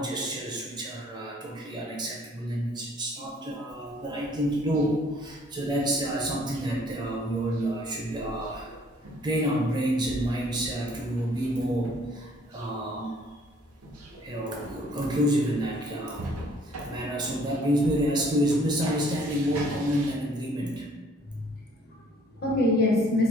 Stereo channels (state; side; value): normal; both; correlation 0.59